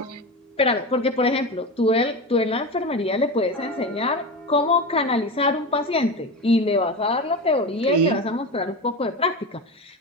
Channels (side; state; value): both; normal; correlation 0.24